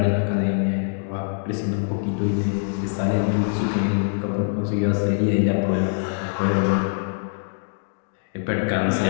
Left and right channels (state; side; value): silent; right; digital silence